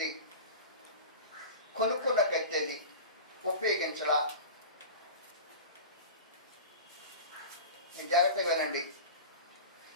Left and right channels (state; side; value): inverted; both; correlation -0.33